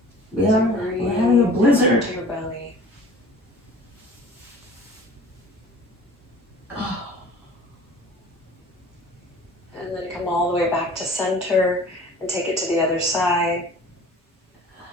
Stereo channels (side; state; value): both; normal; correlation 0.46